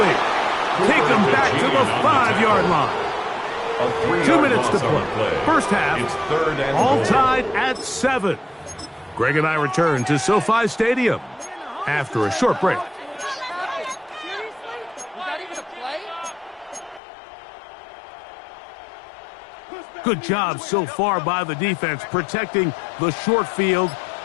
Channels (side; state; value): right; drops out; at 17.0 s